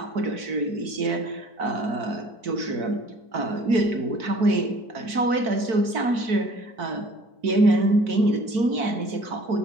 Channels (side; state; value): left; late; 4.6 ms